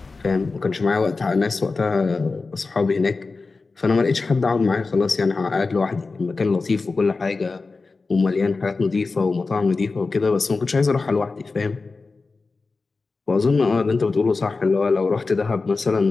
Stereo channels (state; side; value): quieter; right; 4.0 dB